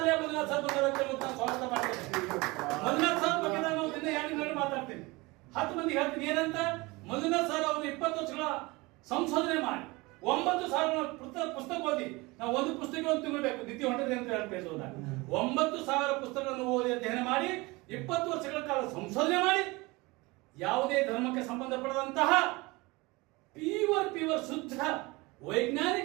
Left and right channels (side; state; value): left; quieter; 23.6 dB